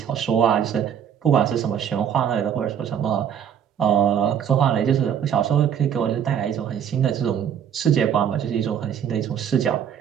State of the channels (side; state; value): left; quieter; 8.7 dB